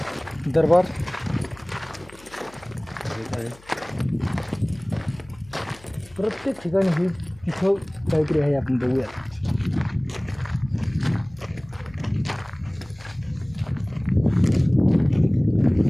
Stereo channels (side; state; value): left; noise; hum, 25 dB below the sound